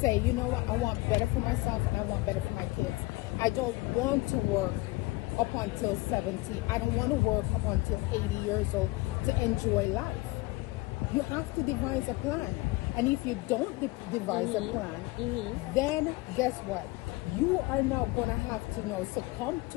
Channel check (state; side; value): quieter; right; 21.8 dB